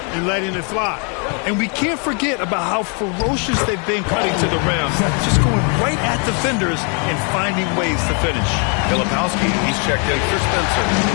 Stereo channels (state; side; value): quieter; right; 37.6 dB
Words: and letting it fly. And we can't forget about how ferocious they've been cutting to the rim. Just going right at defenders and finding ways to finish. Filipowski, he's checked in for Spencer.